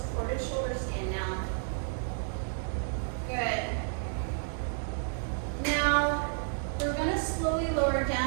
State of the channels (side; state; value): left; silent; digital silence